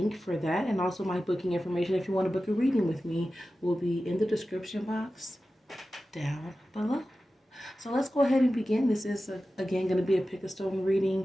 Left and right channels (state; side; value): normal; both; correlation 0.94